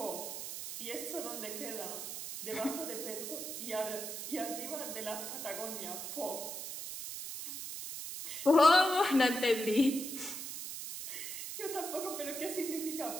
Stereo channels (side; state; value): right; noise; hiss, 6 dB below the sound